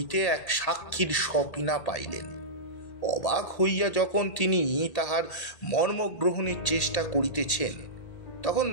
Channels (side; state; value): right; late; 1.8 ms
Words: এক সাক্ষীর সপিনা পাইলেন। অবাক হইয়া যখন তিনি তাহার মর্ম গ্রহণের চেষ্টা করিতেছেন, তখন